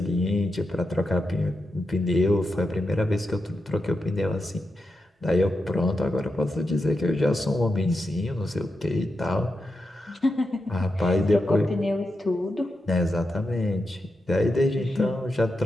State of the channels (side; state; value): both; normal; correlation 0.87